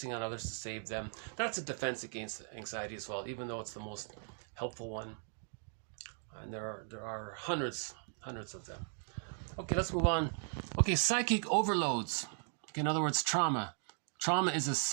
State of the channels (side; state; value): left; silent; 53 dB below the other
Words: on others to save them, that's a defense against anxiety as well, even though it's the most helpful one. And there are hundreds of them. Okay, let's move on. Okay, psychic overloads. Okay, in other words, trauma. Trauma is a